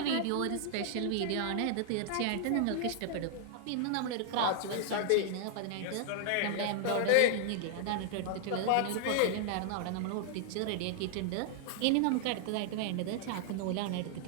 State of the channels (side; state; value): both; different; correlation -0.01